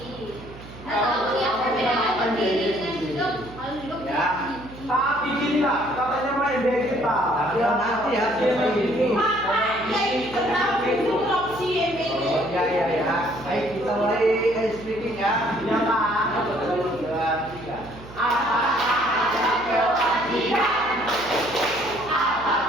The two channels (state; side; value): noise; right; hum, 17 dB below the sound